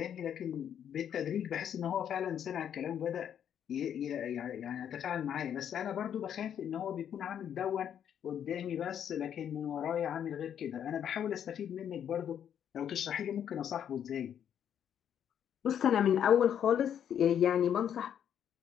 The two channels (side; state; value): right; quieter; 9.2 dB